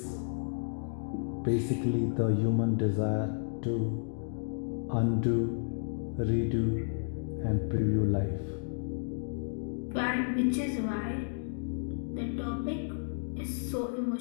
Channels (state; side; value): silent; right; digital silence